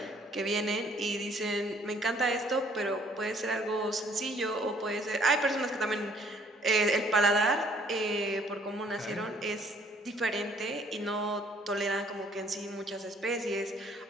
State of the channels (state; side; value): normal; both; correlation 0.61